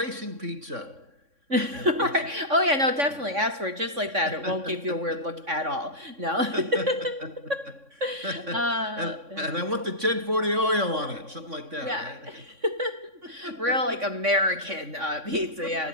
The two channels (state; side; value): late; left; 3.6 ms